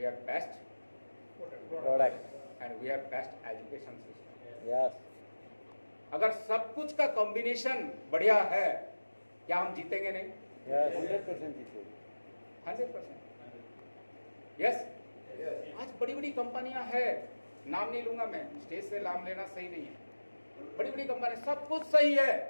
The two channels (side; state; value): both; inverted; correlation -1.00